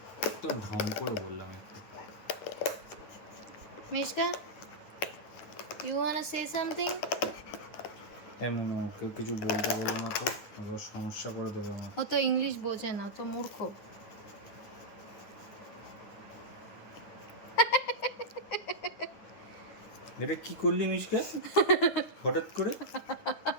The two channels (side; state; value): right; late; 9.8 ms